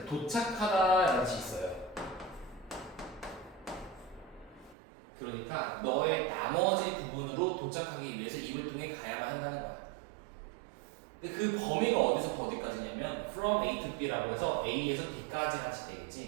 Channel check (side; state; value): left; drops out; at 4.8 s